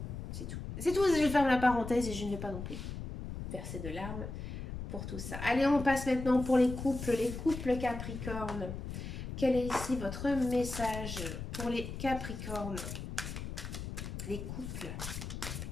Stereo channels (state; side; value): noise; left; rumble, 7 dB below the sound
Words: c'est tout. C'est tout, je ferme la parenthèse et je ne vais pas non plus verser de larmes pour tout ça. Allez, on passe maintenant pour les couples Capricorne. Quel est ici votre message pour les Capricornes, les couples?